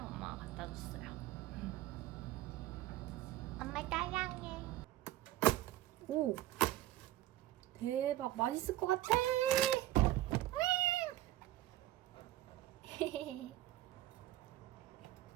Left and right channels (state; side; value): quieter; left; 15.1 dB